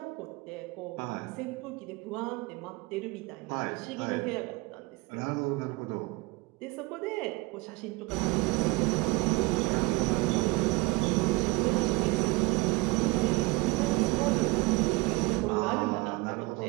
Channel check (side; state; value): left; quieter; 22.9 dB